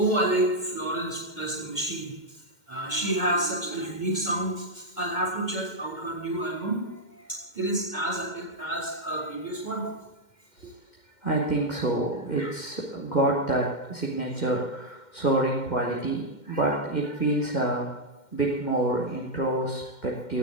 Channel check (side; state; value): right; late; 2.1 ms